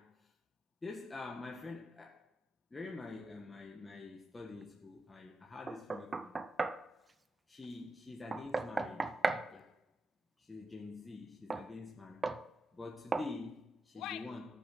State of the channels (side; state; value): both; normal; correlation 0.88